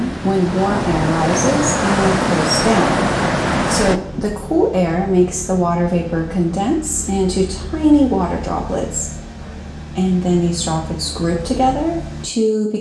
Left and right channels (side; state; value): both; identical; correlation 1.00